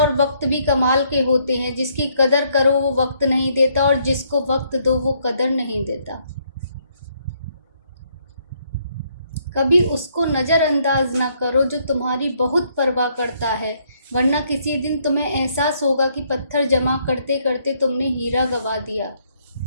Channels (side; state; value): both; inverted; correlation -0.70